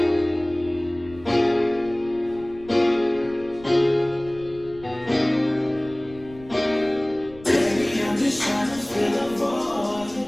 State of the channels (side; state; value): left; noise; rumble, 20 dB below the sound